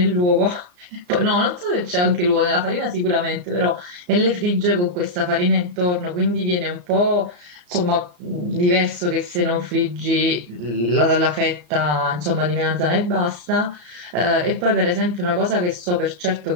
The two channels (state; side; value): late; left; 34 ms